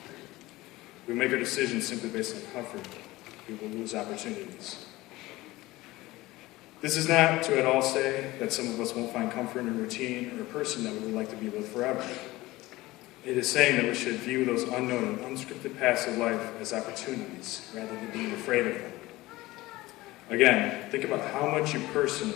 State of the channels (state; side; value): quieter; right; 19.0 dB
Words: We make our decisions simply based on comfort. We will lose opportunities. This is not to at all say that some of us won't find comfort in a routine or a person that we would like to be with forever. It is saying that we should view those unknown and unscripted paths of life as opportunities rather than being afraid of them. Again, think about how much you